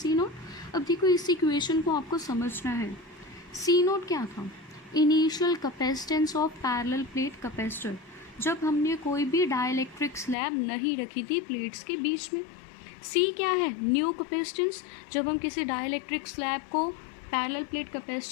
naught. अब देखो इस इक्वेशन को आपको समझना है। सी नोट क्या था? Initial capacitance of parallel plate capacitor, जब हमने कोई भी डाइलेक्ट्रिक स्लैब नहीं रखी थी प्लेट्स के बीच में। सी क्या है? न्यू कैपेसिटेंस, जब हम किसी डाइलेक्ट्रिक स्लैब को पैरेलल प्लेट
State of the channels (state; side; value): drops out; right; at 10.4 s